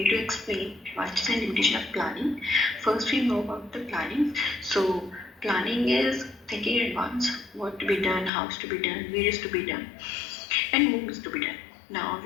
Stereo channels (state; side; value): drops out; right; at 8.3 s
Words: to explain advantages and limitation of planning. First, we know about the planning. So, planning is thinking in advance what to be done, how to be done, where is to be done, and whom is to be done. Now,